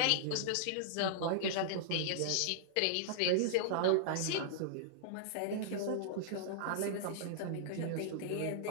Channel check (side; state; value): both; different; correlation -0.01